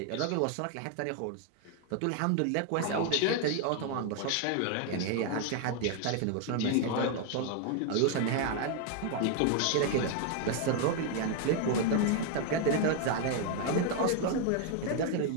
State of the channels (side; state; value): both; different; correlation 0.01